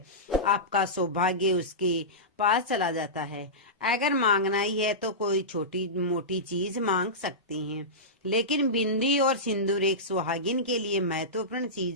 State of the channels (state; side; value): normal; both; correlation -0.16